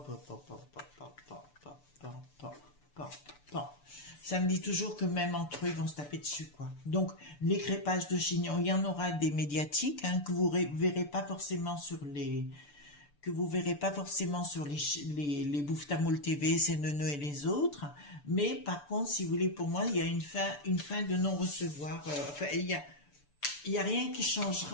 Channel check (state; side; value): late; right; 6.9 ms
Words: Ça me dit toujours que même entre eux, ils vont se taper dessus, quoi. Donc, les crépages de chignons, il y en aura des médiatiques, hein, que vous verrez pas forcément sur les... les Bouffe-Tamoul TV, CNN et les autres. Mais, par contre, si vous voulez, pour moi, il y a une fin de non-recevoir. Enfin, il y a rien qui